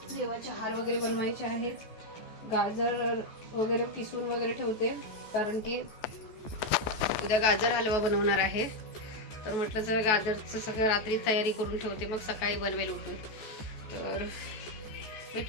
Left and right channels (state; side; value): late; right; 14 ms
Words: देवाचे हार वगैरे बनवायचे आहेत. गाजर वगैरे किसून वगैरे ठेवते, कारण की उद्या गाजर हलवा बनवणार आहे. तर म्हटलं जर गाजरचं सगळं रात्री तयारी करून ठेवते, मग सकाळी बनवेल उठून. तर